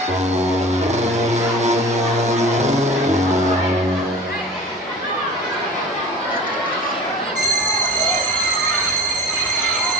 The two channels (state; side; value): normal; both; correlation 0.38